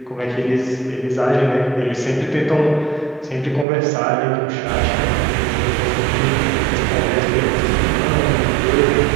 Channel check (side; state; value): left; drops out; at 3.7 s